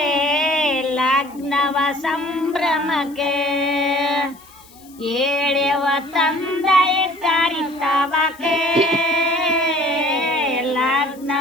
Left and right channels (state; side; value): noise; left; hiss, 25 dB below the sound